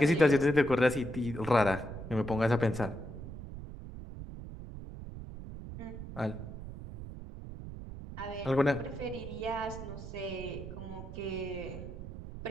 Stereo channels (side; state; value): right; noise; rumble, 10 dB below the sound